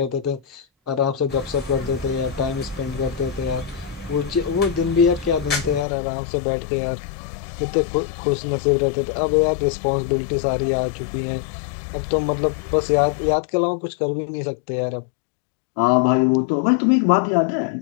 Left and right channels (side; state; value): right; drops out; at 5.9 s